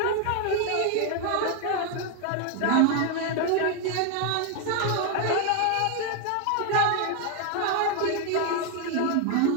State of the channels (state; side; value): different; both; correlation 0.00